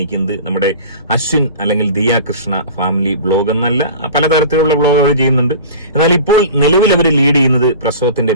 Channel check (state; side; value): inverted; both; correlation -0.38